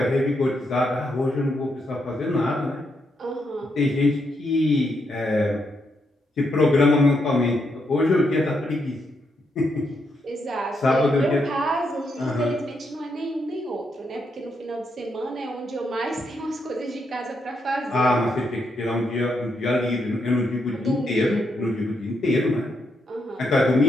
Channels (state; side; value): normal; both; correlation 0.80